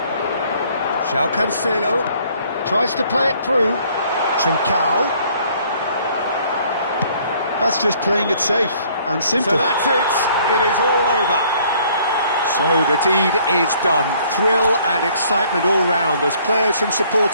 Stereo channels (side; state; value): both; inverted; correlation -0.60